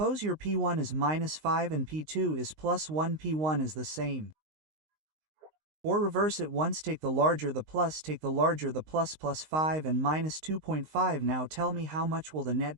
your P1 is minus 5 and P2 is plus 1. P1 is the same. Or reverse it once, take the larger the plus, take the larger the plus 5 and minus 2.5. Now tell me, how much will the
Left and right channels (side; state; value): left; late; 19 ms